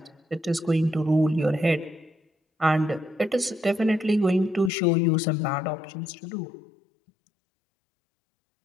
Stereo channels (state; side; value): drops out; right; at 4.7 s